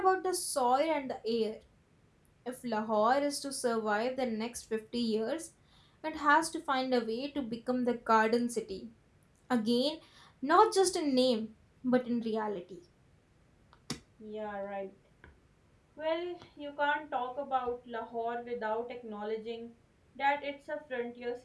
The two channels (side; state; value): both; identical; correlation 1.00